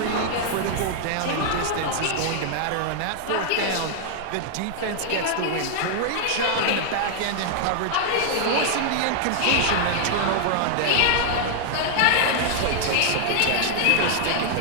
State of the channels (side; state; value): both; different; correlation 0.00